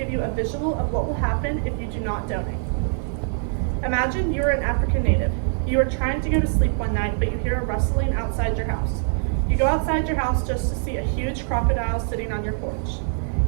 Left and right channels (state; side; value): silent; left; 61 dB below the other